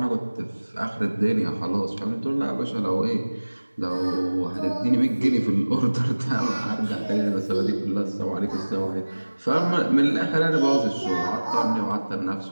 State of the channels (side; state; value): both; inverted; correlation -1.00